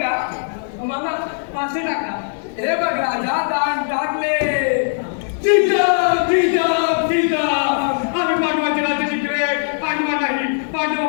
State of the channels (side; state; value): right; silent; 66 dB below the other